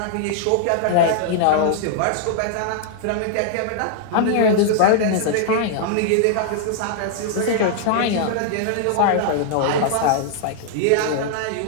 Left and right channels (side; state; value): both; different; correlation -0.01